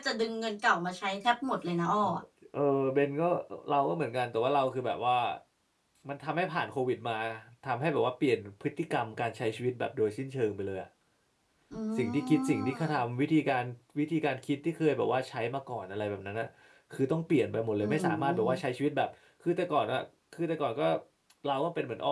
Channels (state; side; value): identical; both; correlation 1.00